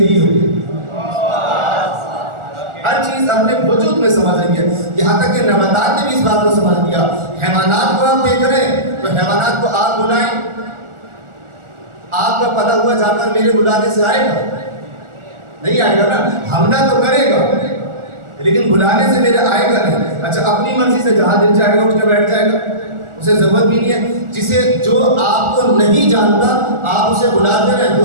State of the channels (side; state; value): left; late; 1.4 ms